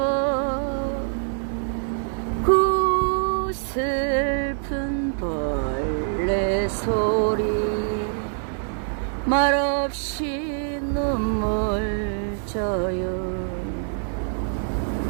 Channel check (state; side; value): silent; left; digital silence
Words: 그 슬픈 벌레 소리 말없이 눈물 져요.